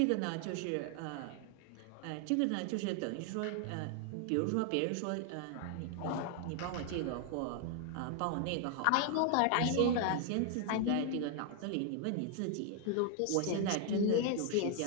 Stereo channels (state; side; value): different; both; correlation 0.00